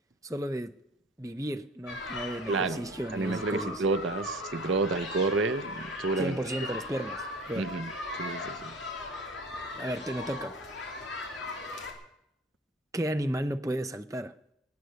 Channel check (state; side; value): normal; both; correlation 0.42